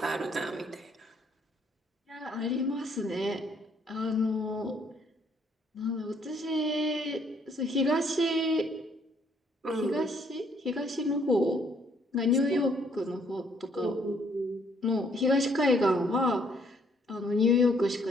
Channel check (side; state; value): both; normal; correlation 0.67